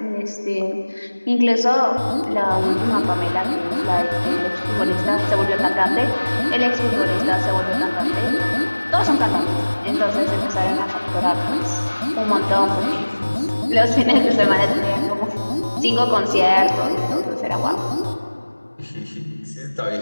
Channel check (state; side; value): inverted; both; correlation -1.00